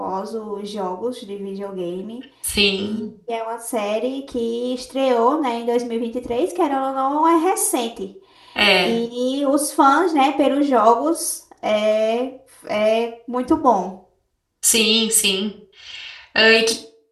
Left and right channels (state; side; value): identical; both; correlation 1.00